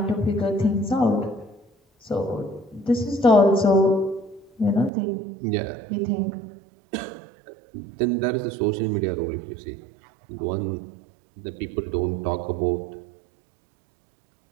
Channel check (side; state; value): left; drops out; at 4.9 s